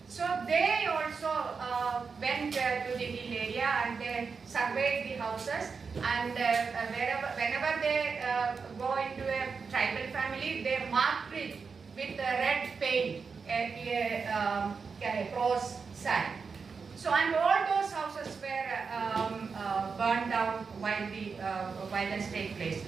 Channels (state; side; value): quieter; left; 5.2 dB